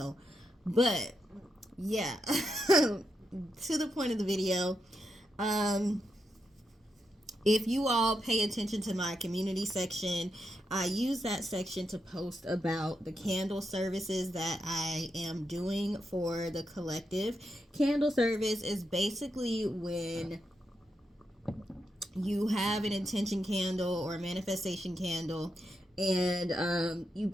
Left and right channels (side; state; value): both; normal; correlation 0.84